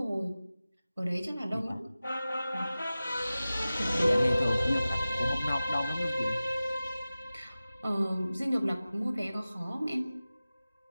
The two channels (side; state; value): both; inverted; correlation -0.96